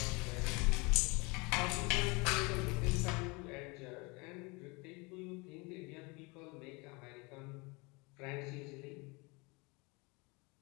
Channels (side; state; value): right; quieter; 27.6 dB